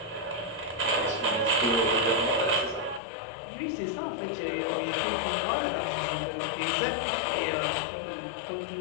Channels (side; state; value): right; drops out; at 3.0 s